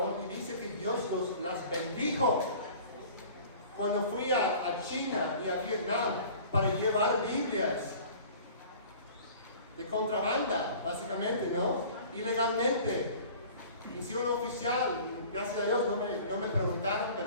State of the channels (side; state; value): both; inverted; correlation -0.45